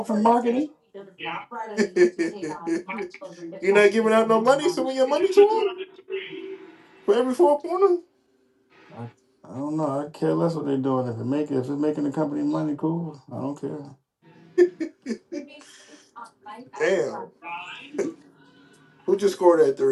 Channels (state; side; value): identical; both; correlation 1.00